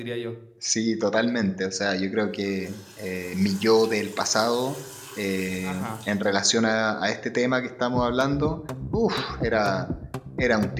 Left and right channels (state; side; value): identical; both; correlation 1.00